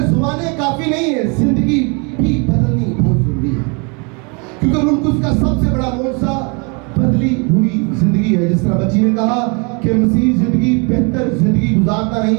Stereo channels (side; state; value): left; quieter; 32.9 dB